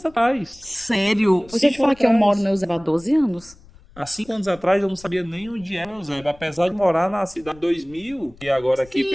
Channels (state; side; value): noise; left; rumble, 24 dB below the sound